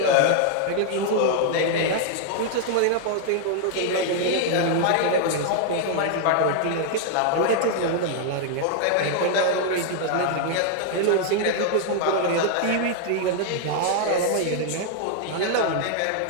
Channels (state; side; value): different; both; correlation 0.00